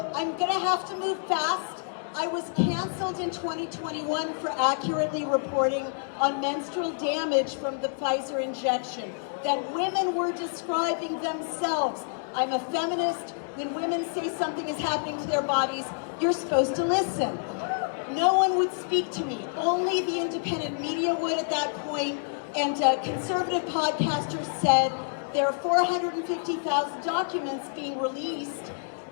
I'm gonna have to move fast. I was canceled in 2021 for accurately reporting on menstrual damage from the Pfizer injection, that women were describing themselves. I'm a feminist. When women say something is happening to their bodies, you're supposed to listen. No one would speak to me. Only the independent media would at that point, and conservative podcasters said there are 450,000 documents being released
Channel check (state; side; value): silent; right; digital silence